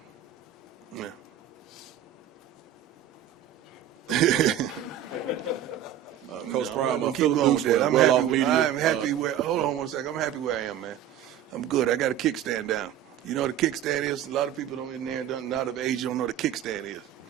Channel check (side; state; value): left; quieter; 10.4 dB